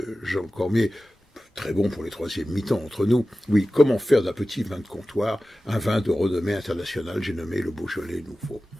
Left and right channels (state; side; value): normal; both; correlation 0.95